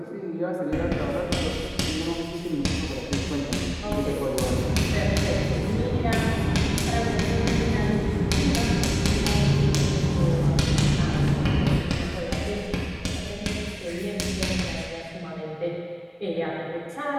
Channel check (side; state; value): both; identical; correlation 1.00